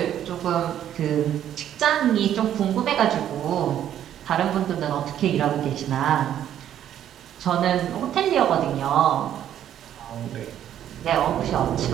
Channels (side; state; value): left; quieter; 10.7 dB